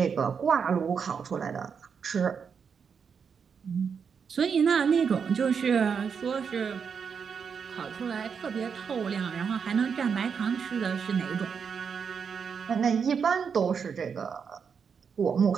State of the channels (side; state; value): left; quieter; 6.4 dB